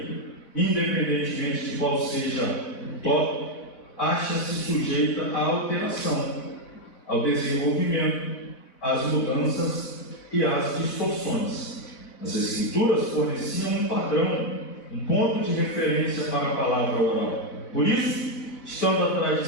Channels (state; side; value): late; right; 4.2 ms